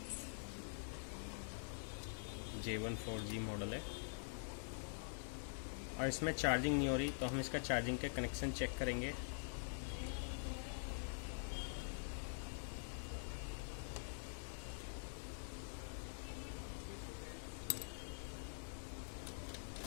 J14G मॉडल है और इसमें चार्जिंग नहीं हो रही। तो हम इसका चार्जिंग के कनेक्शन चेक करेंगे।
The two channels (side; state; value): right; silent; digital silence